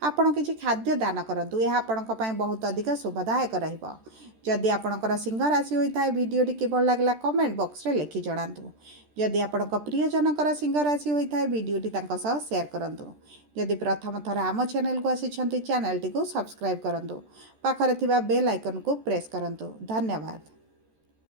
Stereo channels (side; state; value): left; late; 13 ms